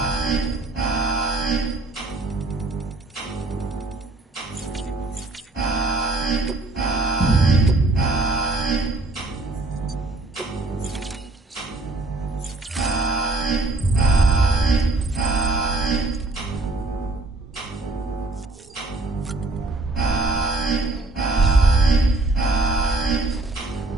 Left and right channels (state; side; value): quieter; left; 3.0 dB